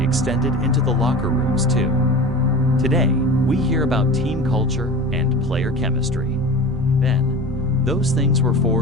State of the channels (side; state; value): both; normal; correlation 0.34